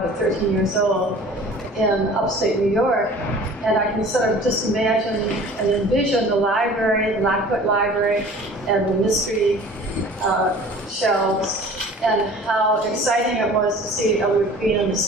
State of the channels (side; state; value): both; normal; correlation 0.45